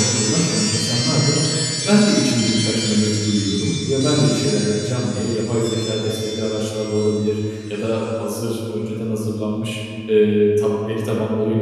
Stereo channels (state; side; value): identical; both; correlation 1.00